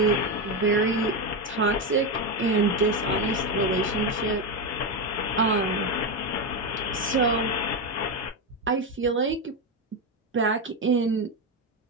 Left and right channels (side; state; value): both; normal; correlation 0.11